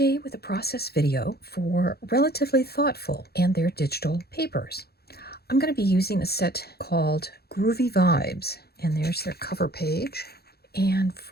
with a process video for Relatively Thoughtful and their digital papers. I'm going to be using a set called Groovy Vibes, and there's their cover page. And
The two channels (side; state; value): right; late; 0.46 ms